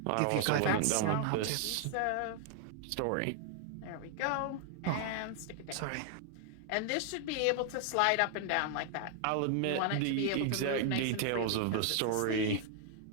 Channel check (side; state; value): both; different; correlation 0.00